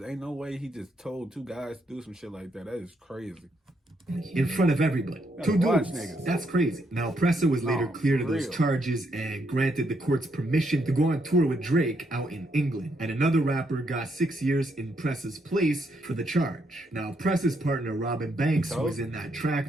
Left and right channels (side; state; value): both; normal; correlation 0.76